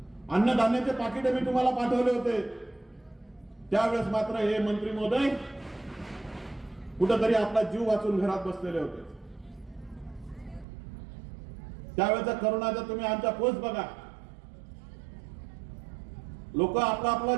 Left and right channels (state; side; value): drops out; left; at 10.7 s